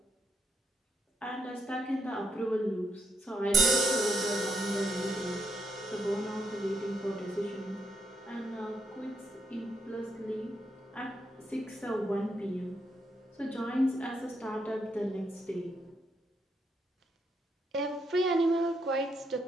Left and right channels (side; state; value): both; normal; correlation 0.78